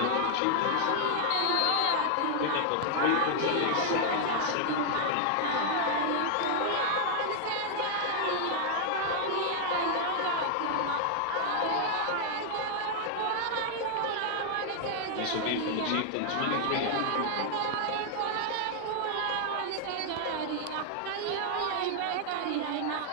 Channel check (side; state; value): both; different; correlation 0.00